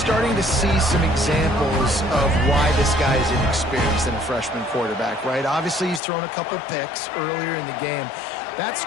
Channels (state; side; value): drops out; right; at 6.0 s